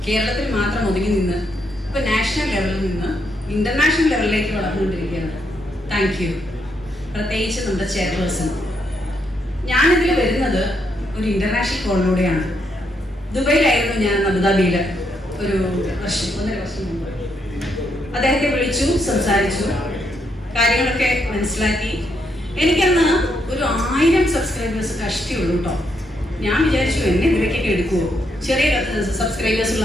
കേരളത്തിൽ മാത്രം ഒതുങ്ങി നിന്ന് ഇപ്പോൾ നാഷണൽ ലെവലിൽ നിന്ന് ഇന്റർനാഷണൽ ലെവലിലേക്ക് വളർന്നുകൊണ്ടിരിക്കുകയാണ്. Thank you. പ്രത്യേകിച്ച് നമ്മുടെ ചെയർപേഴ്സൺ. ഞാനിതിൽ വരുന്നത് ഒരു ഇന്റർനാഷണൽ കോളിലൂടെയാണ്. ദുബൈയിലായിരുന്നു ഞാൻ, അബുദാബിയിൽ ഒരു 1.5 വർഷം മുമ്പ്. അദ്ദേഹത്തെ വിളിച്ചു, സംസാരിച്ചു, കാര്യങ്ങളൊക്കെ മനസ്സിലാക്കി. എനിക്കന്ന് ഒരു 1000 സബ്സ്ക്രൈബേഴ്സ് കഷ്ടിയുള്ളൂ കേട്ടോ. ഞാൻ വിചാരിച്ചു എന്നെ ഇതിലേക്കൊക്കെ എടുക്കുമോ, ചെറിയ സബ്സ്ക്രൈബേഴ്സ്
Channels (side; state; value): both; normal; correlation 0.77